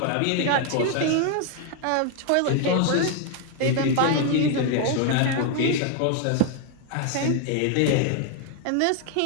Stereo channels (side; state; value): both; different; correlation 0.00